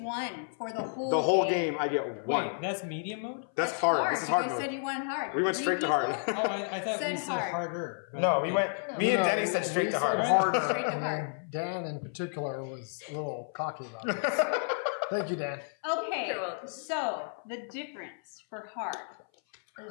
for the whole The whole game, I get one. Wait, that's medium mode? That's hard. This is hard You guys said mode. you went hard. We went straight to hard. Oh, I thought Said we said hard. harder. but No, we okay. went. Me and Denny said straight to hard. Harder. Straight to and hard. then Dan in particular was a little cocky about this. Thank you, Dan. Okay, You're welcome. so the difference for hard.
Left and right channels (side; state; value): right; silent; 57 dB below the other